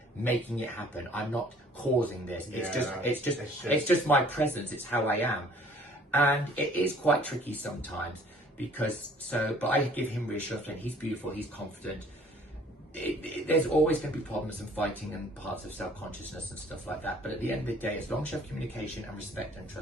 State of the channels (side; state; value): both; normal; correlation 0.55